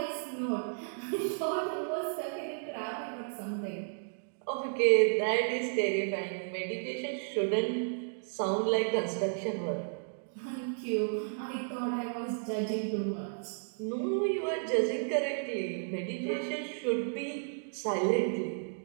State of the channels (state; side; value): silent; left; digital silence